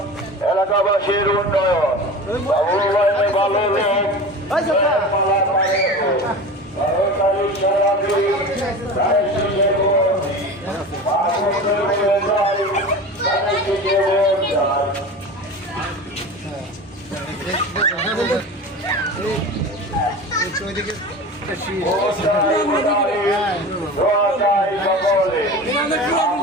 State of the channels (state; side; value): normal; both; correlation 0.32